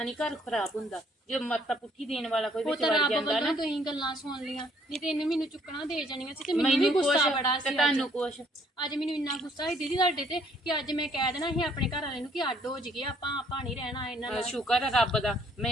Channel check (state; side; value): normal; both; correlation 0.64